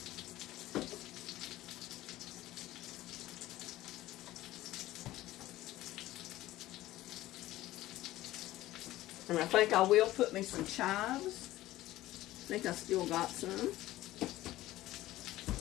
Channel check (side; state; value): right; quieter; 16.0 dB